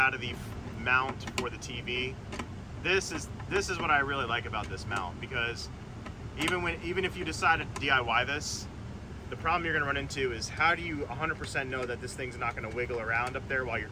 of the mount for the TV. This is what I really like about this mount, because even if you decide to DIY this, the problem you're going to run into is how do you 100% know that this thing's not going to wiggle around up there while you're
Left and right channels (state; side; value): identical; both; correlation 1.00